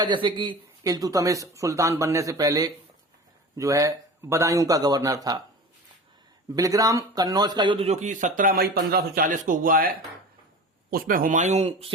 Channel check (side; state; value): both; normal; correlation 0.35